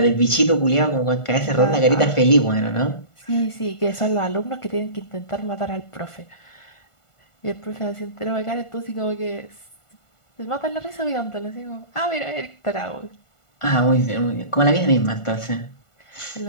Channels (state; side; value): late; right; 1.5 ms